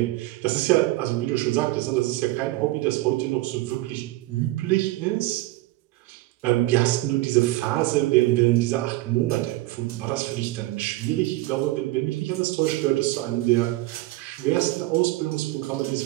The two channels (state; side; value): quieter; left; 18.4 dB